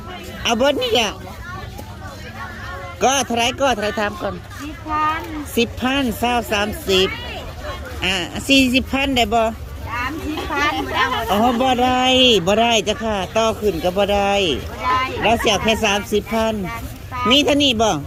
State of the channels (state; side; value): identical; both; correlation 1.00